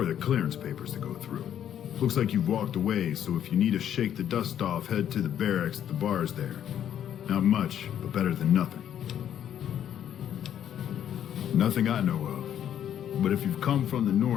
the clearance papers to go through. Looks like you've walked away, so if you need to shake the dust off, head to the barracks at the bars there. Not much, but better than nothing. Nothing I know of. But if you've come from the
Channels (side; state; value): right; quieter; 10.0 dB